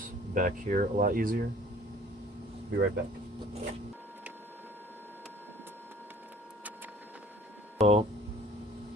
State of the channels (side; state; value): both; normal; correlation 0.50